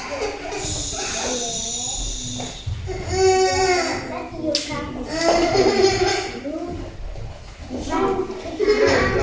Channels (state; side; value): identical; both; correlation 1.00